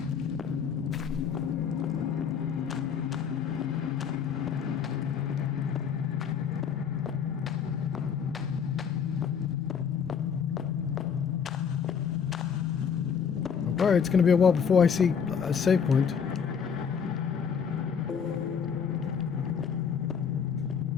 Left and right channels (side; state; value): right; quieter; 7.1 dB